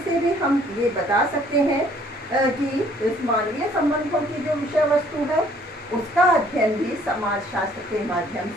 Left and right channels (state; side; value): normal; both; correlation 0.60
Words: से भी हम ये बता सकते हैं कि इस मानवीय संबंधों की जो विषय वस्तु है उसका अध्ययन भी समाज शास्त्र के माध्यम